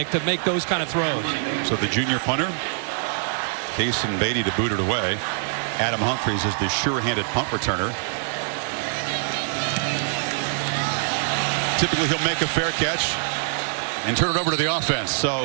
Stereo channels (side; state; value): left; silent; 63 dB below the other